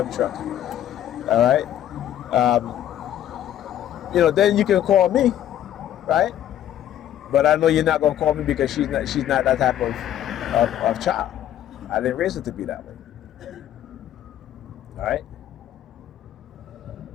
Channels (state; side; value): quieter; right; 11.4 dB